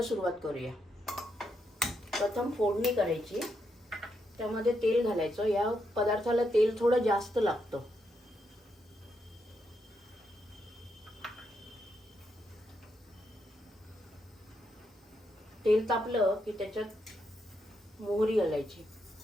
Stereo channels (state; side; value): normal; both; correlation 0.81